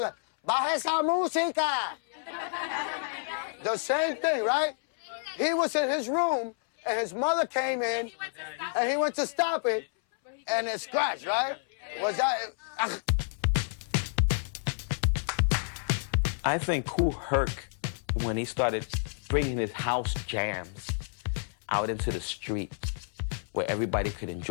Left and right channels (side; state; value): right; silent; 58 dB below the other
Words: like, baja esa música? The same thing, right? He was in his room, and his mother came in, and he went to stop it, and it scratched, right? Was that... I think Kool Herc, when he started bringing his house jams out into the street, where everybody could